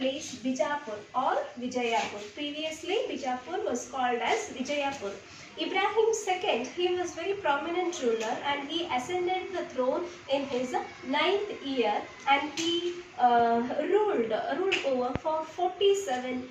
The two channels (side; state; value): both; identical; correlation 1.00